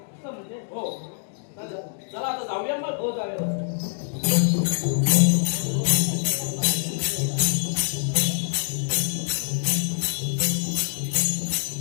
म्हणजे हो, चला आता जाऊया मग. हो जाऊया.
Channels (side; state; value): right; silent; digital silence